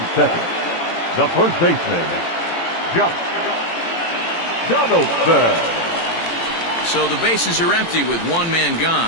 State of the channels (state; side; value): late; right; 18 ms